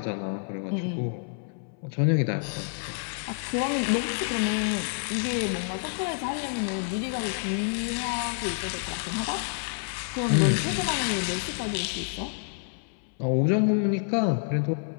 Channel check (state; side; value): silent; right; 59 dB below the other